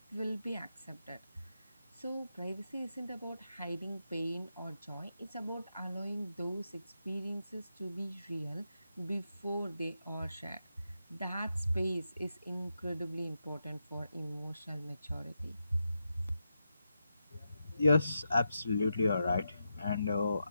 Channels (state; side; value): inverted; both; correlation -0.86